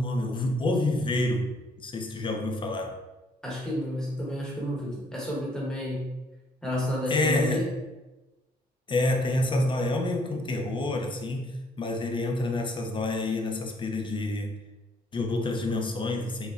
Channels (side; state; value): both; normal; correlation 0.66